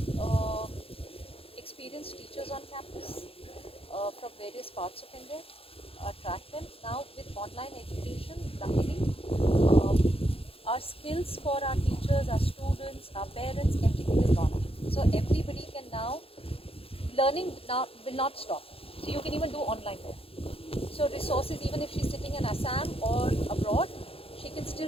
experienced teachers on campus from various parts of India, attract them. Now with online education, luckily, our skills for our teachers, our students, our parents, everything is gone up. So everybody can now, learning now will not stop. So you can even do online learning. So resources, even if she's sitting in Assam or abroad, she can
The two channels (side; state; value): right; late; 0.27 ms